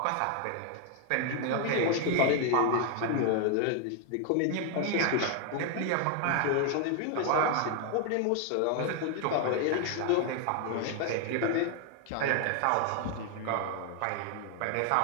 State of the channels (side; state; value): both; different; correlation 0.00